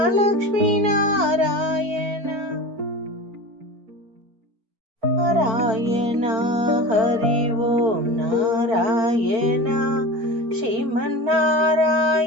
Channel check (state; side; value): late; left; 4.5 ms